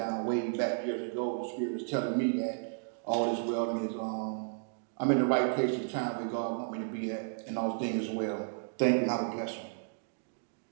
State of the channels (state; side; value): silent; left; digital silence